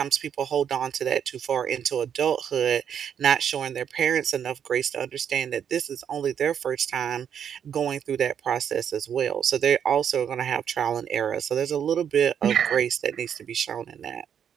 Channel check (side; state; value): left; quieter; 8.4 dB